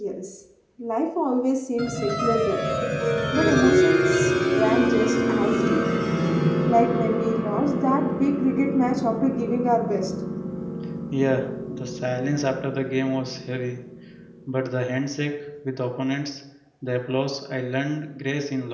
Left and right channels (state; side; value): identical; both; correlation 1.00